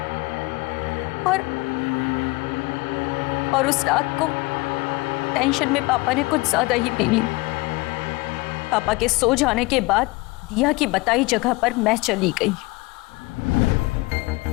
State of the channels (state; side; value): quieter; right; 23.4 dB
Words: और उस रात को टेंशन में पापा ने कुछ ज्यादा ही पी ली। पापा के सो जाने के बाद दिया की बताई जगह पर मैं चली गई।